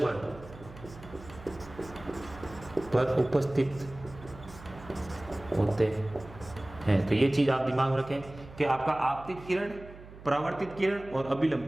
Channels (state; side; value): noise; right; hum, 17 dB below the sound